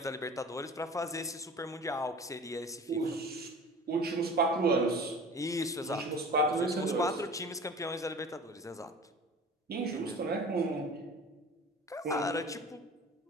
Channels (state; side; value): normal; both; correlation 0.40